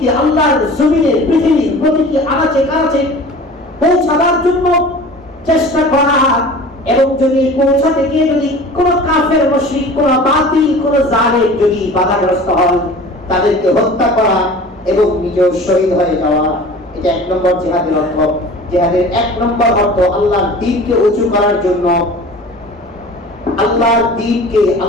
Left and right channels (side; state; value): both; normal; correlation 0.41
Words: আল্লাহর জমিনে পৃথিবীর প্রতিটি আনাচে কানাচে পৌঁছাবার জন্য চেষ্টা করা। এবং যদি পৌঁছাতে গিয়ে যদি কোন কাফের মুশরিক, কোন বাতিল, কোন জালেম যদি বাধাগ্রস্ত হয়, তাদেরকে হত্যা করা এবং নিজেও শহীদ হয়ে যাওয়া, এটা এক নম্বর জিহাদের অর্থ। জিহাদের এক নম্বর অর্থ আল্লাহর দ্বীনকে উঁচু করার জন্য, আল্লাহর দ্বীনকে